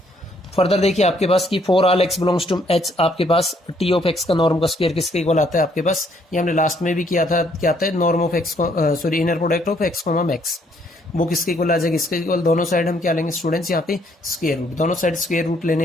फर्दर देखिए आपके पास कि for all x belongs to H, आपके पास टी ऑफ एक्स का नॉर्म का स्क्वायर किसके इक्वल आता है आपके पास, ये हमने लास्ट में भी किया था, क्या आता है norm of x, sorry inner product of x comma x, वो किसके इक्वल आ जाएगा, इसके इक्वल। दोनों साइड हम क्या लेंगे स्टूडेंट्स, यहाँ पे स्क्वायर रूट, दोनों साइड स्क्वायर रूट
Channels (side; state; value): both; normal; correlation 0.67